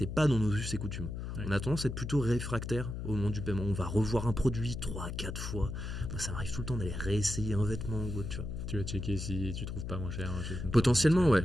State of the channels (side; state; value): left; noise; hum, 6 dB below the sound